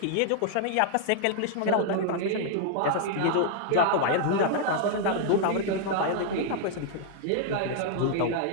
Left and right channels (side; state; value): both; different; correlation -0.01